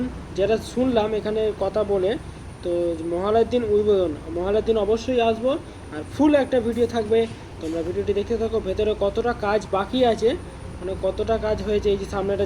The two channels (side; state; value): both; identical; correlation 1.00